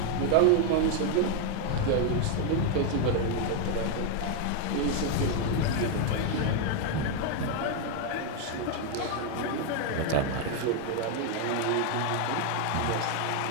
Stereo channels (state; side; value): different; both; correlation 0.01